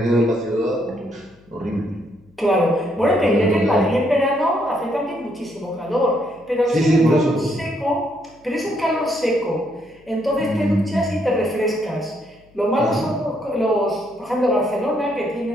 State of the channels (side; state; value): left; noise; hum, 30 dB below the sound